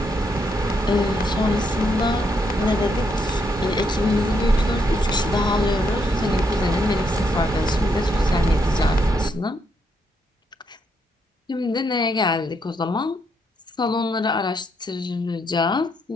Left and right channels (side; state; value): both; normal; correlation 0.76